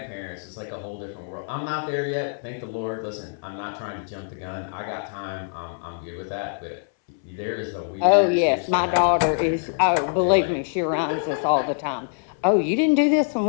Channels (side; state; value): right; silent; 62 dB below the other